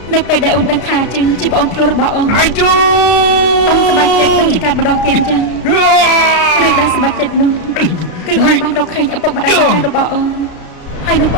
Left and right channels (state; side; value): late; right; 33 ms